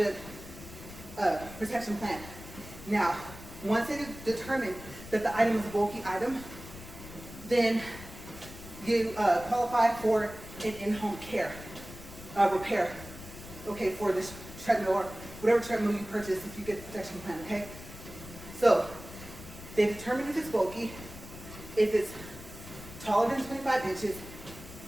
protection plan. Now, once they determine that the item is a bulky item, then you qualify for an in-home care repair, okay, for this treadmill or whatever treadmill you purchase if you get the protection plan, okay? So, they determine if it's bulky, if it's taller than 25 inches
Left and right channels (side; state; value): left; noise; rumble, 15 dB below the sound